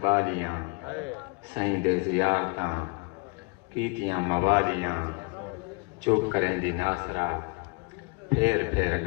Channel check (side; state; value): right; quieter; 30.1 dB